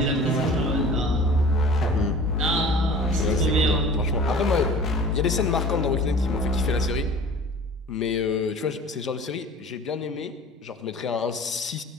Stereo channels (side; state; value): both; normal; correlation 0.43